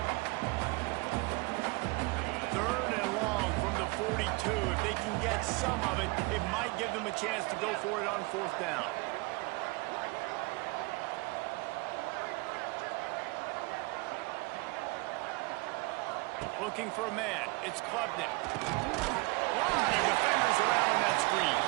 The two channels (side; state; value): left; quieter; 26.0 dB